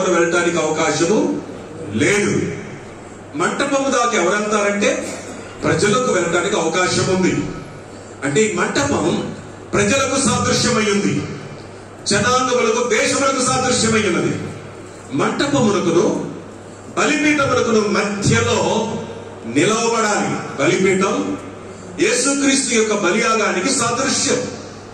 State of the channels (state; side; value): identical; both; correlation 1.00